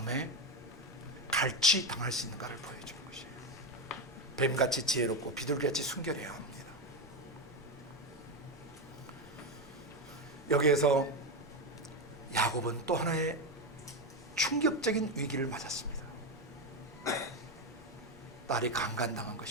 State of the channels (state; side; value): normal; both; correlation 0.12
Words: 갈취당할 수 있는가를 보여주는 것이에요. 뱀같이 지혜롭고 비둘기같이 순결해야 합니다. 여기에서 야곱은 또 하나의 충격적인 위기를 맞았습니다. 딸이 강간당한